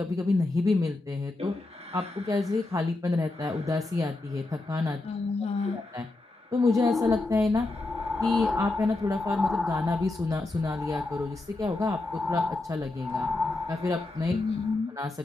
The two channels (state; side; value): quieter; right; 3.0 dB